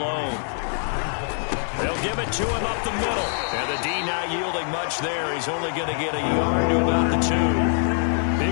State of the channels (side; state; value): right; silent; 63 dB below the other